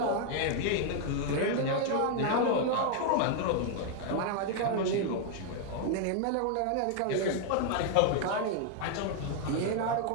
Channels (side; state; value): both; different; correlation 0.00